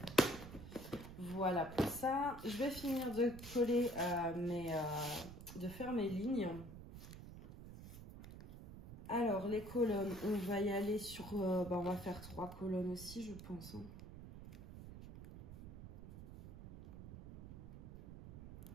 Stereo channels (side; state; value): right; noise; rumble, 13 dB below the sound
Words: Voilà pour ça. Je vais finir de coller de faire mes lignes. Alors les colonnes, on va y aller sur on va faire 3 colonnes aussi je pense hein.